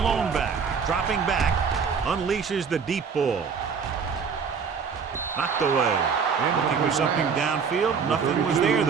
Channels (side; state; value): left; quieter; 6.0 dB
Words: back, dropping back, unleashes the deep ball. Knocked away. Looking for something downfield. Nothing was there,